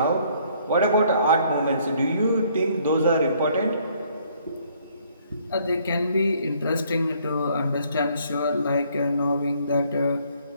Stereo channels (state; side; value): inverted; both; correlation -0.64